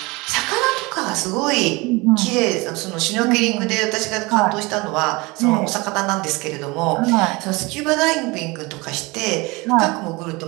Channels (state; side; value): quieter; left; 24.3 dB